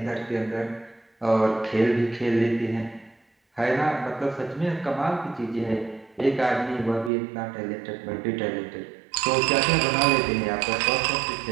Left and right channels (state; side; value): drops out; left; at 7.1 s